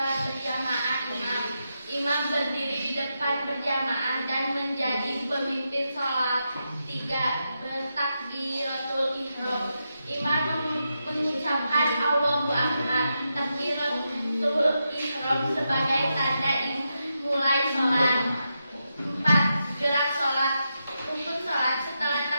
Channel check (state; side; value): inverted; both; correlation -0.86